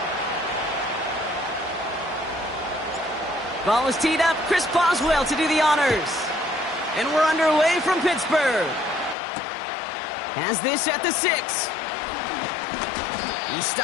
Ball is teed up. Chris Boswell to do the honors. And we're underway from Pittsburgh. Has this at the 6. He's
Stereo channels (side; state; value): right; drops out; at 9.2 s